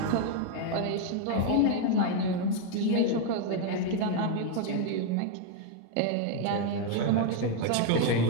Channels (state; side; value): different; both; correlation 0.01